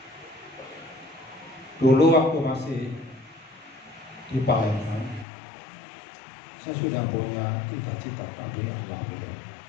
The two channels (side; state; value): right; drops out; at 5.2 s